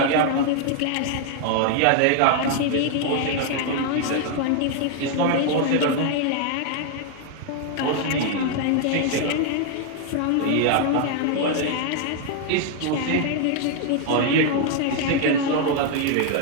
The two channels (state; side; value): different; both; correlation 0.00